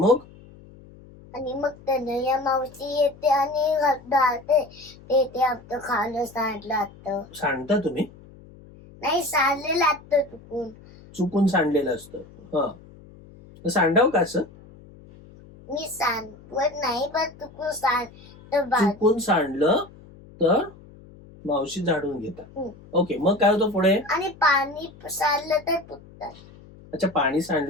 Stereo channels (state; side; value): noise; left; hum, 22 dB below the sound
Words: आणि मग तनया मावशी येते आणि घालते. ते आमचं खाणं सांडलं असतं. सांडता तुम्ही? नाही, सांडलेलं असतं चुकून. चुकून सांडलेलं असतं. हा, सांडाव का असं? मी सांडवत नाही, पण चुकून चुकून सांडलं तर मावशी झाडून घेतात. ओके. मग काय होतं पुढे? आणि पाणी सांडलं तर पुसतात. अच्छा, पाणी